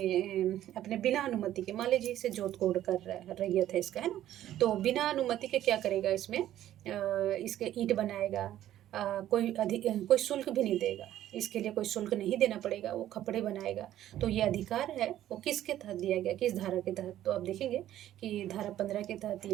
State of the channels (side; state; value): left; quieter; 12.6 dB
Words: बिना अनुमति के, मान लीजिए इसे जोत कोड कर रहा है, रैयत है इसका, है ना, तो बिना अनुमति के क्या करेगा, इसमें इसके ईंट बनाएगा, कोई शुल्क भी नहीं देगा, इसके लिए कोई शुल्क नहीं देना पड़ेगा, वो खपड़े बनाएगा, तो ये अधिकार है वो किसके तहत दिया गया, किस धारा के तहत, तो आप देखेंगे कि धारा 15 के तहत ये